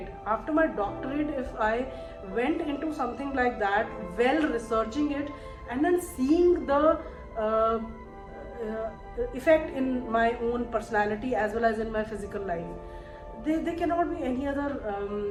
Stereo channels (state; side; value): identical; both; correlation 1.00